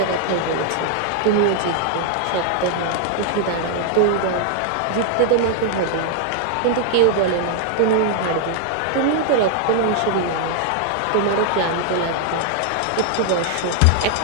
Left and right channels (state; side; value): different; both; correlation 0.00